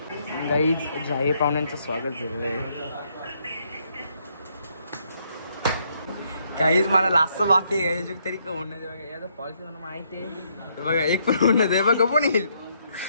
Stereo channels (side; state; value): both; inverted; correlation -0.72